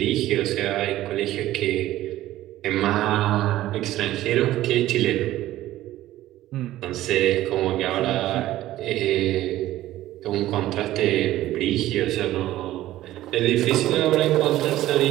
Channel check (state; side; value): quieter; left; 14.8 dB